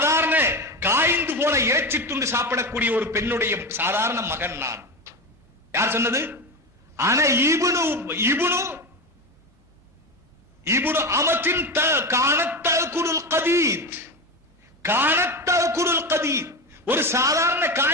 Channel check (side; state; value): both; normal; correlation 0.21